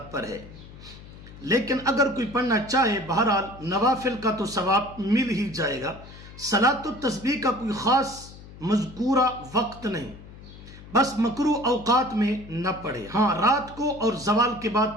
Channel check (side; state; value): left; noise; hum, 17 dB below the sound